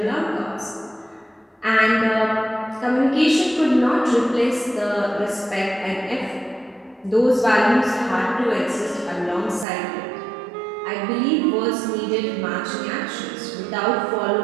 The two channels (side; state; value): left; drops out; at 9.7 s